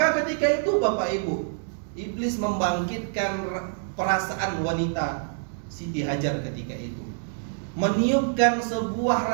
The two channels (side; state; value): left; silent; digital silence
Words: ketika itu Bapak Ibu, iblis membangkitkan perasaan wanita Siti Hajar ketika itu, meniupkan sebuah